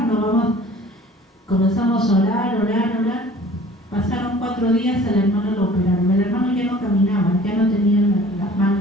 comenzamos a orar. Pasaron 4 días, al hermano lo operaron. El hermano ya no caminaba, ya no tenía las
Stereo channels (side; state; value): both; normal; correlation 0.49